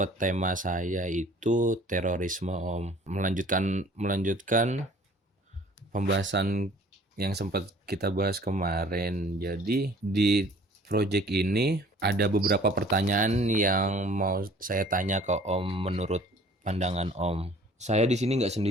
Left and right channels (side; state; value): both; normal; correlation 0.51